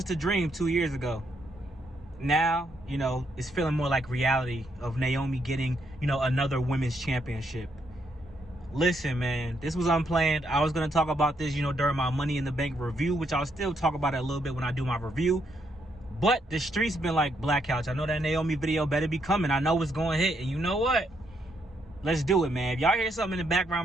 a dream 2 years ago. Now, you know, it's feeling more like reality of Naomi getting, you know, another women's championship. Listen, man, this was unplanned. I was going to talk about this, you know, during my Money in the Bank review, which I'll still talk about it a little bit when I do my review. But the streets been like, Black Couch, I know that Naomi video better be coming. I know it's going to hit. And you know what? Let's do it, man. If y'all hear something in the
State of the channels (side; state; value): both; normal; correlation 0.75